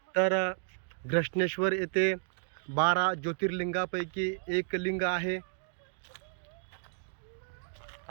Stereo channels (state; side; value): silent; left; digital silence